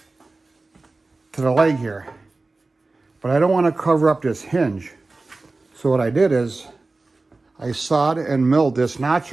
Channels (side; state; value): left; quieter; 3.4 dB